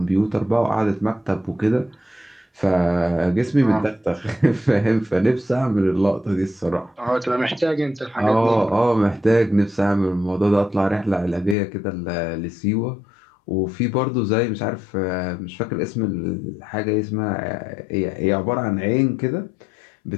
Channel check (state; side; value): drops out; right; at 11.6 s